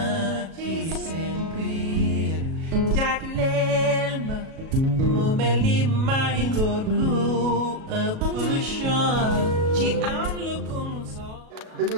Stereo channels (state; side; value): late; left; 37 ms